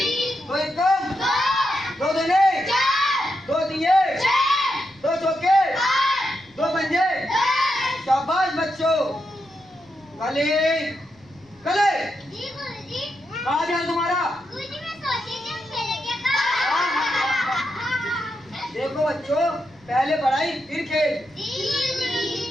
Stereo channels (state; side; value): noise; left; rumble, 29 dB below the sound